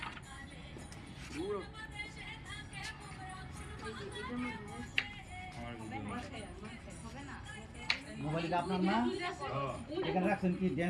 মোবাইলটা আপনার না এখানে রাখছেন কি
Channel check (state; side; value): identical; both; correlation 1.00